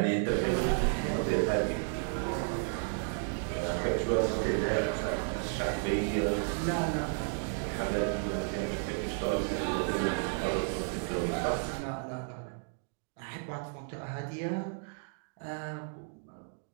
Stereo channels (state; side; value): silent; left; 56 dB below the other